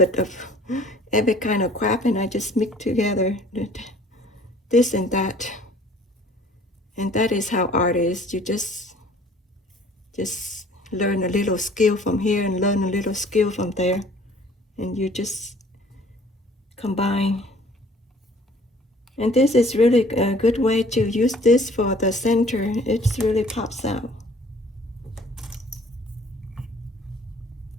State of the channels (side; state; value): both; normal; correlation 0.54